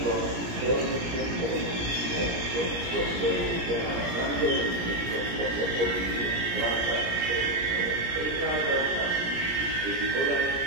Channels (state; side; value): late; left; 17 ms